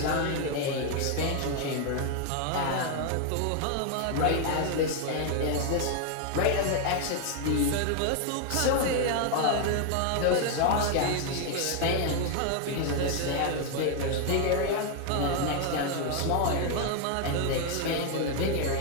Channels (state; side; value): different; both; correlation 0.01